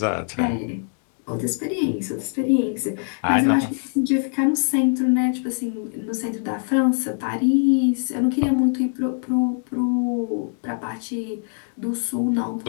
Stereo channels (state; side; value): silent; right; 63 dB below the other